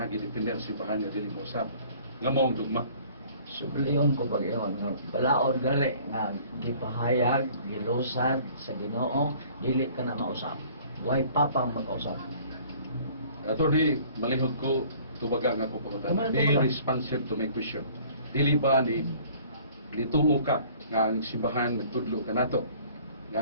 gidepender simbahan nga dili mo usab. Nga maong dugma. Subliyon ko pag-iyon nga balaod gali nga gipahayag, gilusad sa Ginoo, dili ka na mausap. Way papang mag-usap. Attorney, malihog ko tubaga nga akong pangutan. Be responsive to my question. Dili ba ni nituo ka nga ang simbahan nagtudlo ka nato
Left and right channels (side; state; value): both; inverted; correlation -0.53